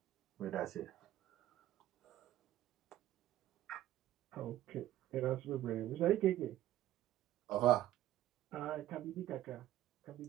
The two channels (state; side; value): quieter; left; 13.8 dB